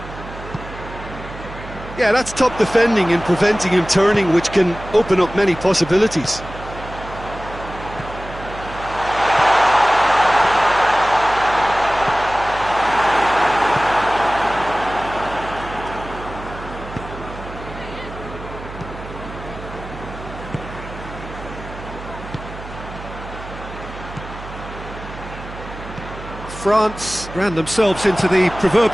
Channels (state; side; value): noise; right; hum, 13 dB below the sound